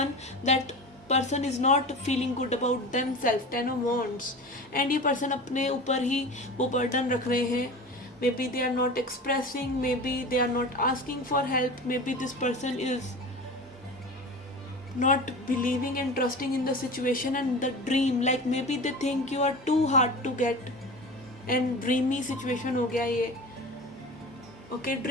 that person is not feeling good about them self, 10 of Wands. And ये पर्सन अपने ऊपर ही वो बर्डन रख रहे हैं. Maybe they are not expressing, maybe they are not asking for help, maybe this person is not believing and trusting in the situation and the dream, like maybe they think you are too hard to get, and dreamy situation हो गया ये. Okay,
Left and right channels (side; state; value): both; normal; correlation 0.32